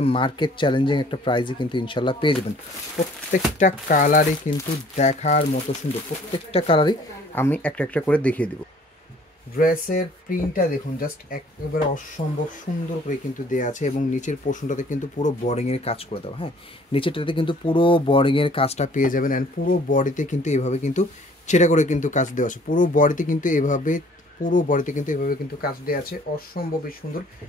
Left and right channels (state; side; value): normal; both; correlation 0.56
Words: মার্কেট চ্যালেঞ্জিং একটা প্রাইসে কিন্তু ইনশাল্লাহ পেয়ে যাবেন। প্রত্যেকটা কালারই কিন্তু দেখার মতো সুন্দর, প্রত্যেকটা কালারই আমি একটা একটা করে দেখিয়ে দেবো। ড্রেসের প্রিন্টটা দেখুন, জাস্ট একেবারে অসম্ভব সুন্দর করে কিন্তু দেওয়া আছে এবং নিচের পোর্শনটাতে কিন্তু পুরো বর্ডিংয়ের কাজ করে দেওয়া। হ্যাঁ, নিচেরটাতে কিন্তু পুরো বর্ডিংয়ের কাজটা পেয়ে যাবেন। অ্যান্ড পুরো বডিতে কিন্তু এভাবে কিন্তু ছেড়ে করে কিন্তু কাজ দেওয়া আছে। পুরো বডিতে কিন্তু এভাবে কিন্তু কাজ দেওয়া আছে, অসম্ভবই সুন্দর।